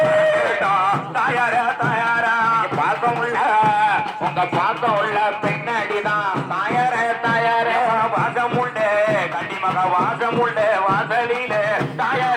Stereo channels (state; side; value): identical; both; correlation 1.00